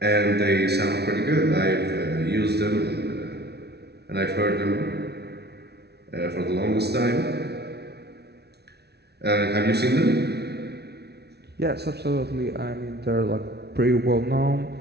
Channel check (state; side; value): late; left; 0.48 ms